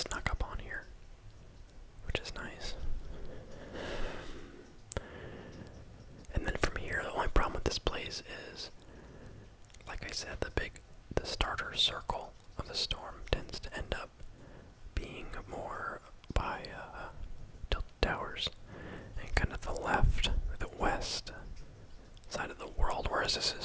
up on here, which is nice. And then from here, the only problem with this place is, like I said, the starter circle of the storm tends to end up being more by tilted towers and kind of the left, the west side of the world, whereas this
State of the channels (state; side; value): identical; both; correlation 1.00